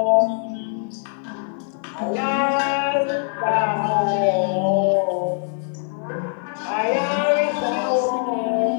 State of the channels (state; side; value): silent; right; 62 dB below the other